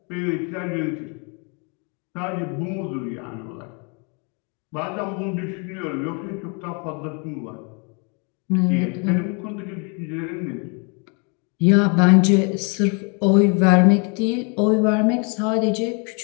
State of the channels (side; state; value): right; quieter; 35.1 dB